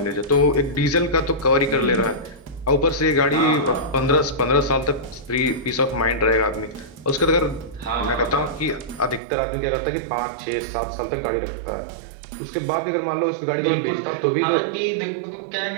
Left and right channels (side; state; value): left; drops out; at 9.2 s